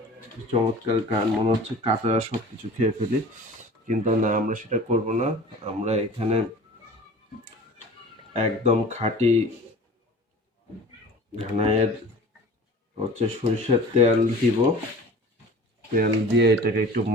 চমৎকার গান, মনে হচ্ছে কাঁচা সব কিছু খেয়ে ফেলি, কিন্তু না, আমরা সেটা করব না। আমরা এখানে একদম খাঁটি ঘানায়ের হচ্ছে সরিষার তেল দিব। তেল দিয়ে এটাকে একটু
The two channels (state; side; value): normal; both; correlation 0.41